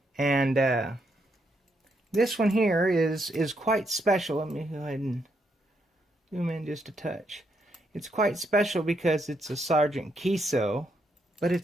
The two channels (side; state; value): both; normal; correlation 0.77